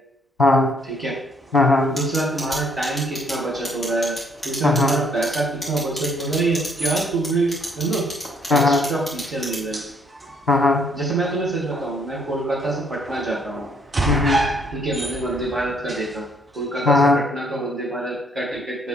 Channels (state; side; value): normal; both; correlation 0.67